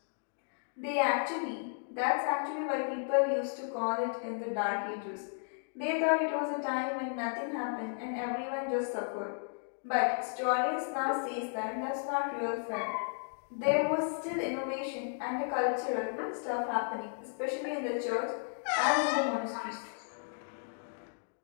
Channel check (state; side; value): silent; right; digital silence